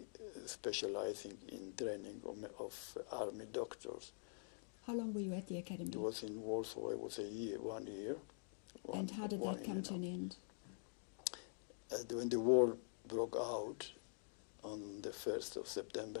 specializing in training of army doctors. How long were you at the academy? It was in Warsaw. It was 1 year. And how did that come to an end? When the war broke out on the 1st of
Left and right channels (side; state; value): right; silent; digital silence